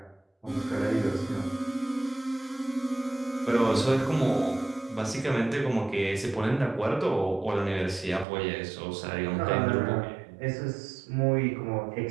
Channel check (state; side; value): drops out; left; at 8.2 s